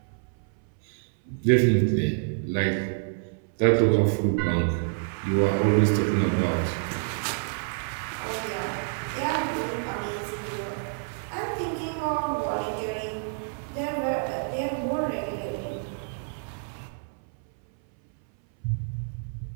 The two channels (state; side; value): silent; left; 60 dB below the other